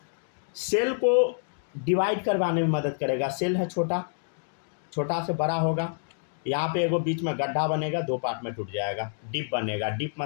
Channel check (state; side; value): silent; right; digital silence